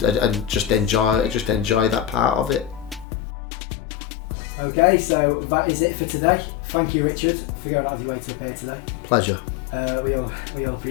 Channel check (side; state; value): right; drops out; at 3.1 s